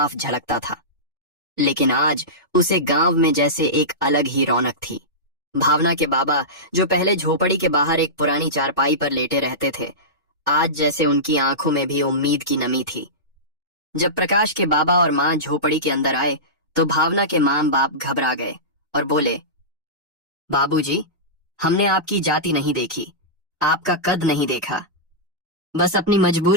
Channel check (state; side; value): normal; both; correlation -0.17